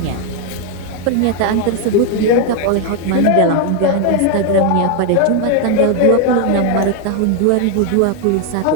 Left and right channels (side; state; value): both; different; correlation 0.01